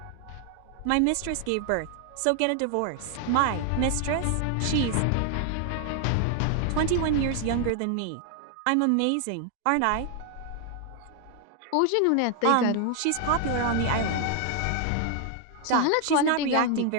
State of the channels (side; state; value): both; different; correlation 0.00